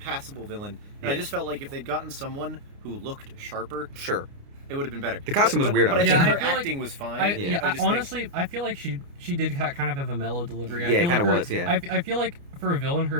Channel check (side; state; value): left; late; 29 ms